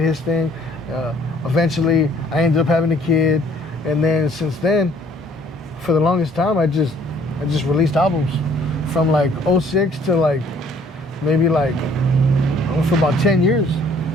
his thing. Eventually, I ended up having a kid. And then since then, for the longest time, I just released albums from like 06 to maybe for about 10 years.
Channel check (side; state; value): both; normal; correlation 0.59